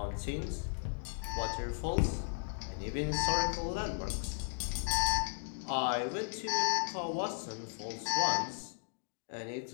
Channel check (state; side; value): silent; right; digital silence